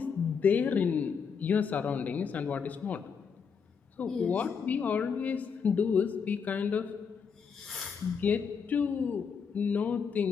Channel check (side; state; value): right; quieter; 6.2 dB